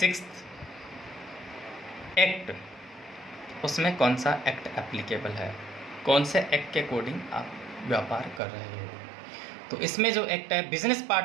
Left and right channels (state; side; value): drops out; left; at 8.4 s